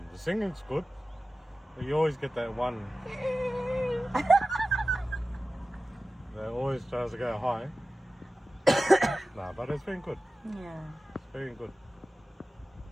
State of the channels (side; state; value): both; normal; correlation 0.95